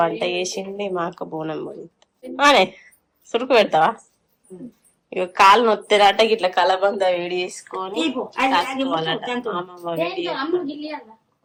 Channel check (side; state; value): both; identical; correlation 1.00